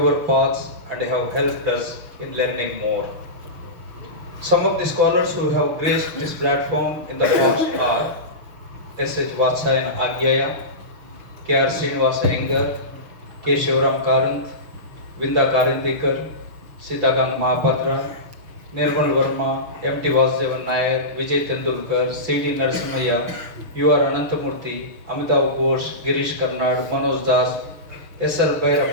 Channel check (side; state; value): left; late; 6.0 ms